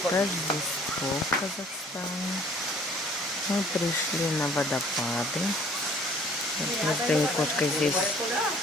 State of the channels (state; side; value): normal; both; correlation 0.55